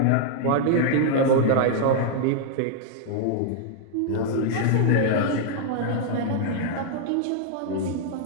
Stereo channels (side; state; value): both; different; correlation -0.01